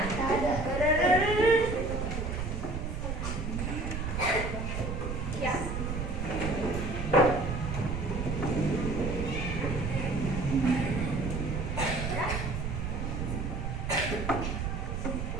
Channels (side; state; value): right; noise; rumble, 3 dB below the sound